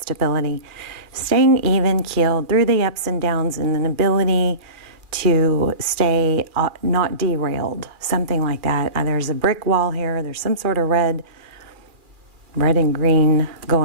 staying even keeled through the ups and downs, and an ability to stay not derailed, something like that. There's a brick wall here. There's some sort of red and green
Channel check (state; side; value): late; left; 2.4 ms